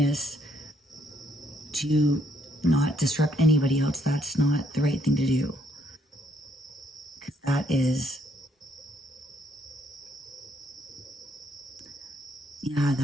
to not disrupt anybody else, that's not the right thing to do. Because that is not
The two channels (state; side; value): normal; both; correlation 0.70